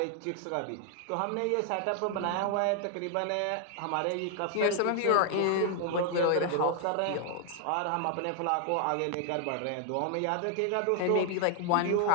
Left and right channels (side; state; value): both; different; correlation 0.00